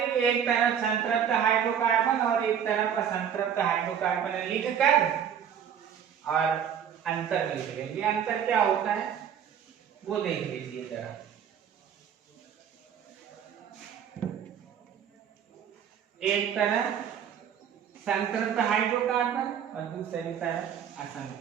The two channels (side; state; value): left; quieter; 8.6 dB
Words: एक तरफ संतृप्त हाइड्रोकार्बन और एक तरफ असंतृप्त हाइड्रोकार्बन लिखकर और अंतर लिख लेंगे। अंतर क्या होता है वो देख लीजिए जरा। एक तरफ संतृप्त हाइड्रोकार्बन और दूसरी तरफ